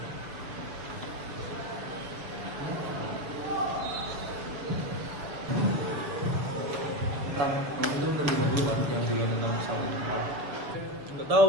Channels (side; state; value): left; late; 6.8 ms